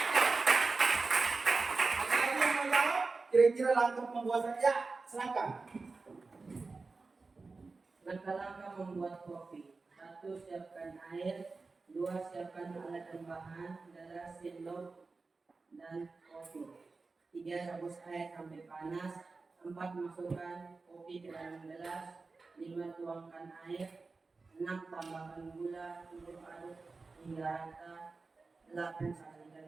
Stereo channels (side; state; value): left; quieter; 4.0 dB